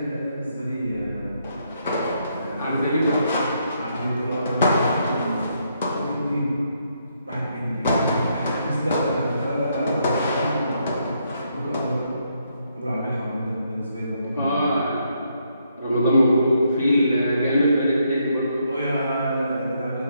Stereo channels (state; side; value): inverted; both; correlation -0.75